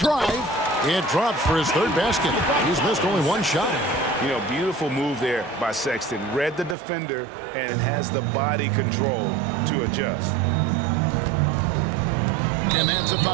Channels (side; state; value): left; drops out; at 6.8 s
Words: It drops for his 3rd basket. He's missed only 1 shot. You know, beautiful move there by Sexton. Read the defender and has the body control to adjust. And that's a